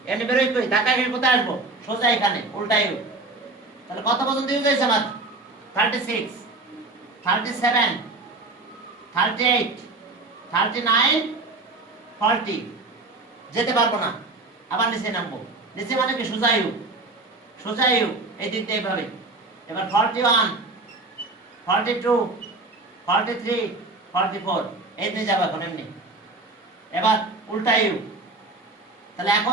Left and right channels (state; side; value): quieter; left; 3.3 dB